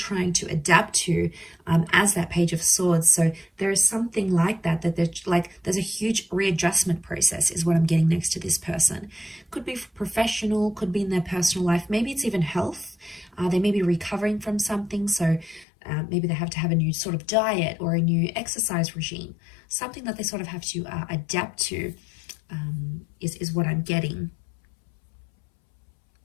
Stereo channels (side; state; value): right; drops out; at 15.7 s